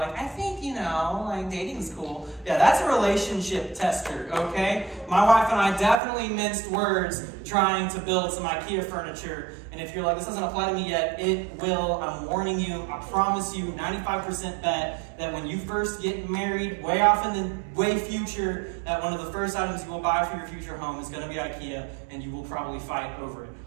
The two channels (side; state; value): left; drops out; at 6.0 s